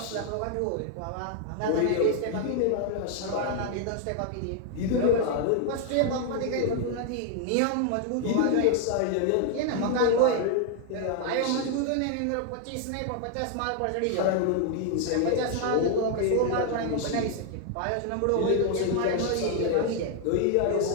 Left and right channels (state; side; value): different; both; correlation 0.00